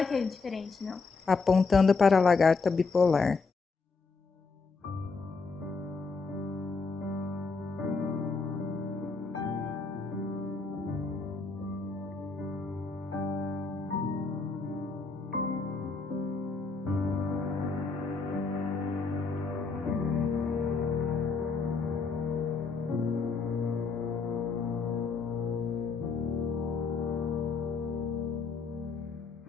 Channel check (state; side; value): quieter; right; 4.4 dB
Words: que é diferente, não. Apontando para a lagarta bipolar.